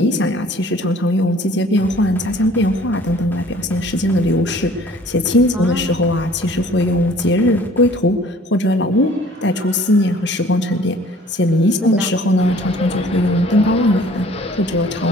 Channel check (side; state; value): both; normal; correlation 0.52